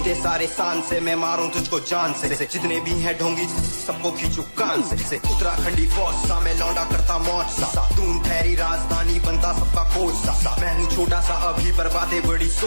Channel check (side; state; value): both; inverted; correlation -1.00